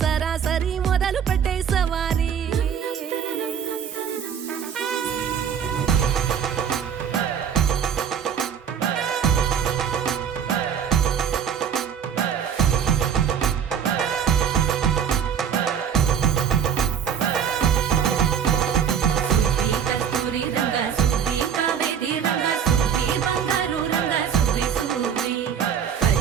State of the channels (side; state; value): left; quieter; 8.0 dB